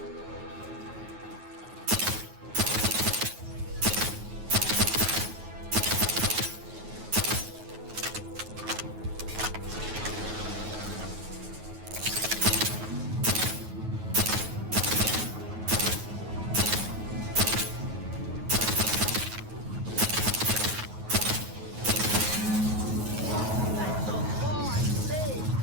That's the law I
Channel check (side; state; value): left; late; 9.4 ms